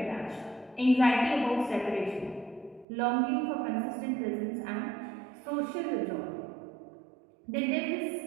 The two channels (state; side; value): drops out; left; at 2.9 s